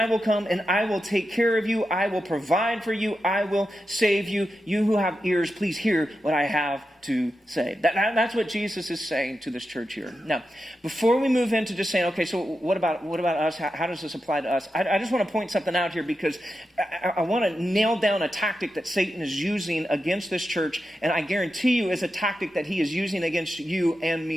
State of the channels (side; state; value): both; normal; correlation 0.89